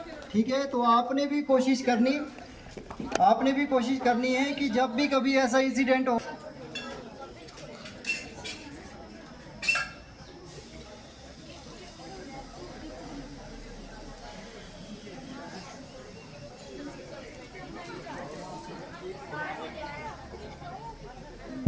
ठीक है। तो आपने भी कोशिश करनी है कि जब भी कभी ऐसा इंसिडेंट हो,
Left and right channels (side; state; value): both; identical; correlation 1.00